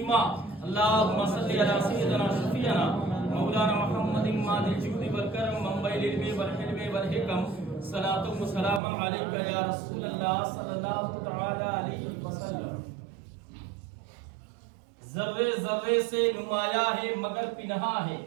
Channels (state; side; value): drops out; left; at 8.8 s